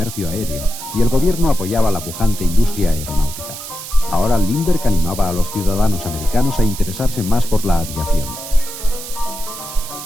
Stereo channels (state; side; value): noise; right; hiss, 10 dB below the sound